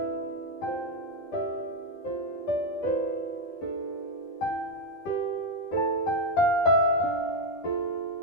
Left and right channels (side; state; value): right; late; 12 ms